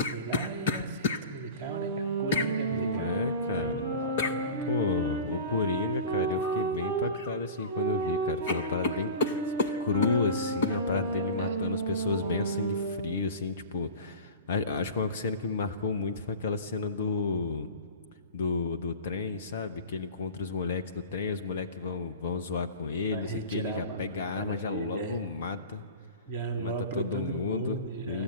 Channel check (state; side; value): inverted; both; correlation -0.34